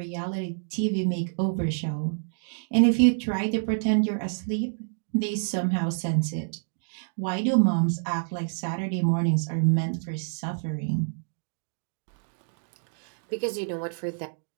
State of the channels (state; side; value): silent; left; digital silence